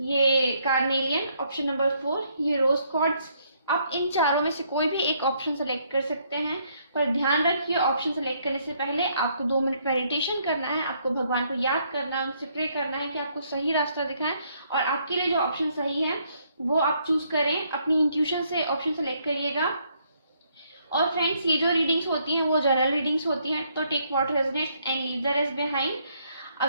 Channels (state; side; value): inverted; both; correlation -0.70